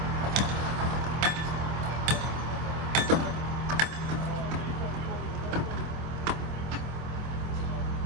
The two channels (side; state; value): left; late; 26 ms